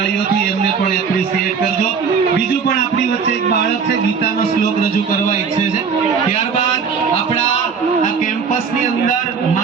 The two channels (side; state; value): left; quieter; 6.0 dB